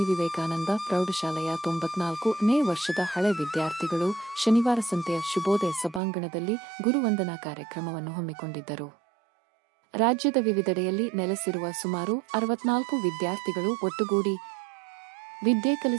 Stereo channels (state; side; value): drops out; left; at 6.0 s